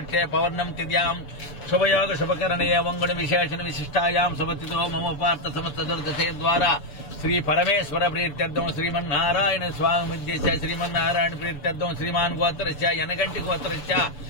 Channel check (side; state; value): right; late; 6.9 ms